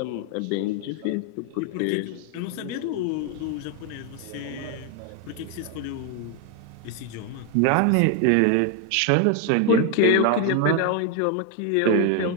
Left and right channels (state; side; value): different; both; correlation 0.01